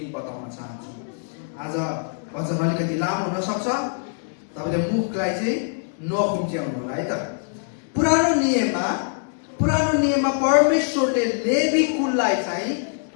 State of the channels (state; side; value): silent; right; digital silence